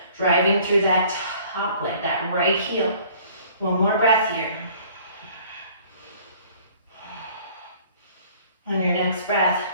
driving through that top leg, that right heel. One more breath here. On your next breath,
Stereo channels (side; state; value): both; inverted; correlation -0.54